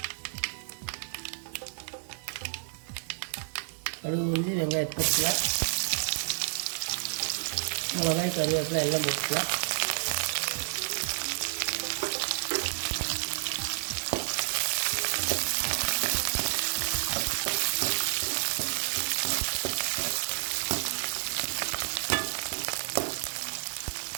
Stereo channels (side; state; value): left; silent; 58 dB below the other